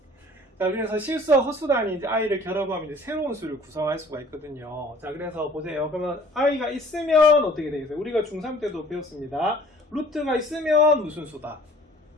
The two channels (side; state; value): both; normal; correlation 0.52